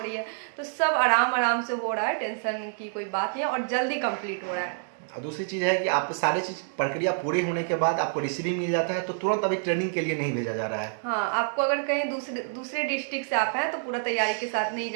रही है, तो सब आराम आराम से हो रहा है, टेंशन की कोई बात नहीं है और जल्दी कंप्लीट हो रहा है। और दूसरी चीज़ है कि आपके सारी चीज़ प्रक्रिया पूरी होने के बाद आपको रिसीविंग मिल जाता है, तो तुरंत अभी ट्रेनिंग के लिए नहीं भेजा जा रहा है। हाँ, आपको अगर कहीं दूसरे डिस्ट्रिक्ट से आप हैं तो पूरा तैयारी के साथ नहीं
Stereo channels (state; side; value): silent; left; digital silence